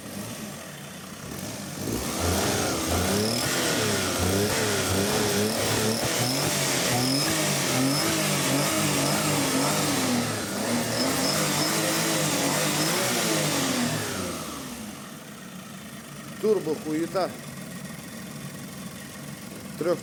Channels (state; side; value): identical; both; correlation 1.00